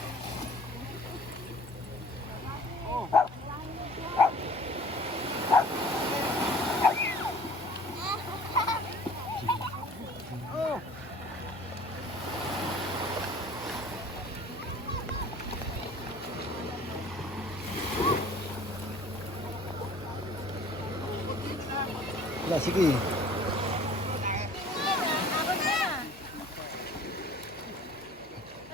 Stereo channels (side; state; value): both; normal; correlation 0.49